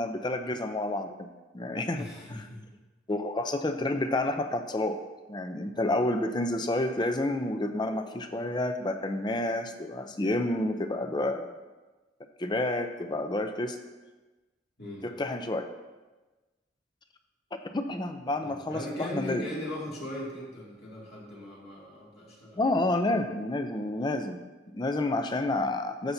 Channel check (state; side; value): normal; both; correlation 0.56